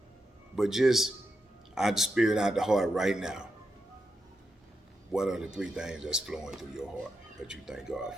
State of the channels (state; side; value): normal; both; correlation 0.86